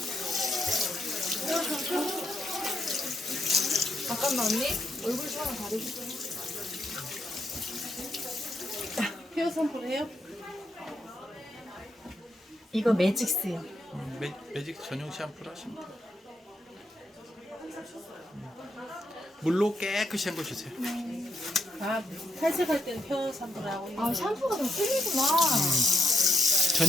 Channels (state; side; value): normal; both; correlation 0.80